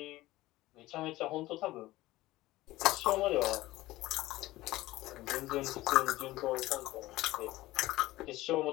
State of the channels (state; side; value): quieter; right; 17.6 dB